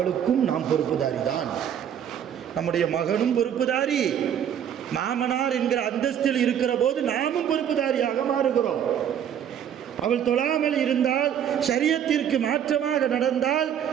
நாம் பொறுப்புதாரி தான். நம்முடைய மகனும் பொறுப்புதாரி, மாமனார் என்கிற அந்தஸ்தில் இருக்கிற போது நாமும் பொறுப்புதாரியாக மாறுகிறோம். அவள் தொழாமல் இருந்தால், ஷரியத்திற்கு மாற்றமாக நடந்தால்,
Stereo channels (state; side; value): quieter; left; 9.3 dB